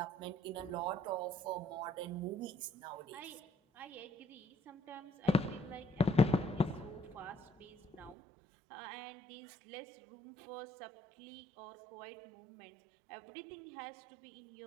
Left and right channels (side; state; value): left; drops out; at 8.2 s